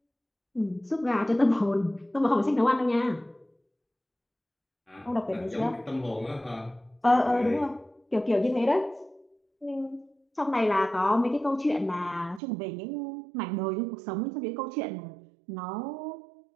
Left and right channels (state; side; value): drops out; left; at 12.4 s